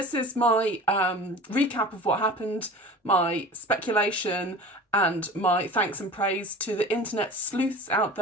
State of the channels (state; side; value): normal; both; correlation 0.38